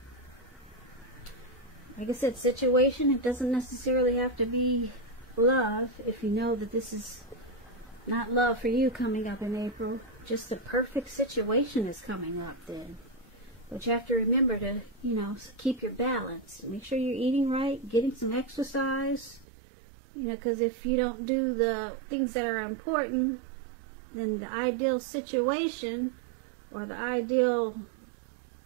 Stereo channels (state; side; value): drops out; left; at 19.5 s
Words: like I said, situation. It doesn't necessarily have to be love. If you know that this is not love for you coming up in April, just the perfect situation is coming up then. But you have to remember to, keep your balance. Make sure you're eating right, getting some exercise. Because if you don't do the things that are important, then the ideal situation or the ideal